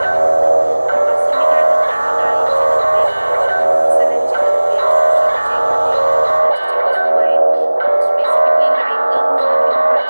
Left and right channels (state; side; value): inverted; both; correlation -1.00